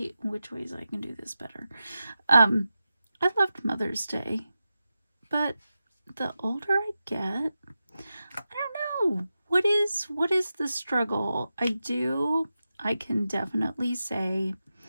which ways I can do this better. I loved Mother's Day, but the older I get, I don't know. What is the struggle? I can definitely say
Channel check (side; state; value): both; inverted; correlation -0.92